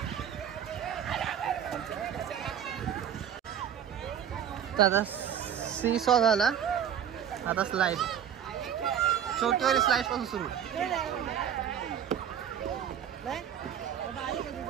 आता सी सॉ झाला. आता स्लाइड, छोटीवाली स्लाइड पासून सुरू.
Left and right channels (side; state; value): left; quieter; 9.2 dB